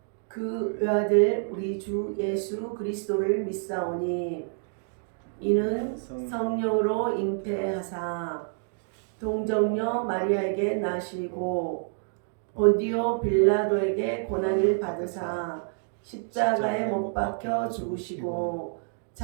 그 외아들 우리 주 예수 그리스도를 믿사오니 이는 성령으로 잉태하사 동정녀 마리아에게 나시고 본디오 빌라도에게 고난을 받으사 십자가에 못 박혀 죽으시고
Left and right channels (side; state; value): left; silent; 59 dB below the other